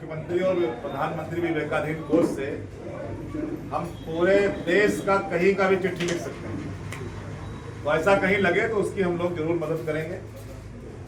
और प्रधानमंत्री विवेकाधीन कोष से हम पूरे देश का कहीं का भी चिट्ठी लिख सकते हैं। तो ऐसा कहीं लगे तो उसकी हम लोग जरूर मदद करेंगे।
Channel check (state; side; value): identical; both; correlation 1.00